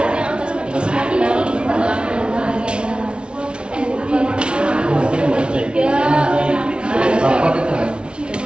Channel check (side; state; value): left; late; 0.057 ms